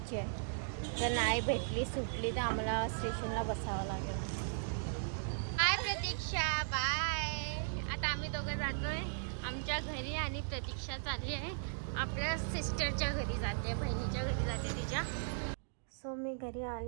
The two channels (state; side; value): silent; left; digital silence